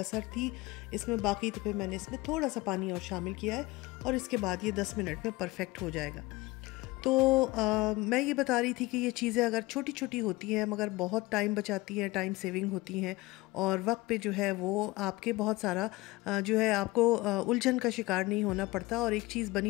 थी इसमें बाकी, तो फिर मैंने इसमें थोड़ा सा पानी और शामिल किया है और इसके बाद ये 10 मिनट में परफेक्ट हो जाएगा। तो मैं ये बता रही थी कि ये चीज़ें अगर छोटी छोटी होती हैं मगर बहुत टाइम बचाती हैं, टाइम सेविंग होती हैं, और वक्त पे जो है वो आपके बहुत सारा जो है आपको उलझन का शिकार नहीं होना पड़ता, और एक चीज़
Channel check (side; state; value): right; quieter; 20.9 dB